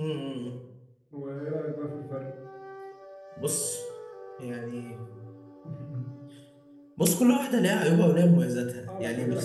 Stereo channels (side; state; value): both; identical; correlation 1.00